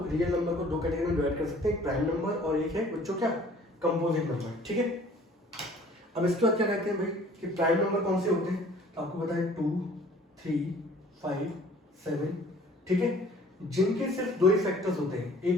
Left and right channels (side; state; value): both; normal; correlation 0.52